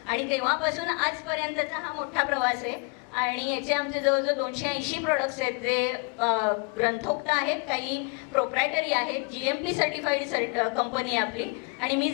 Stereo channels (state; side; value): quieter; right; 35.3 dB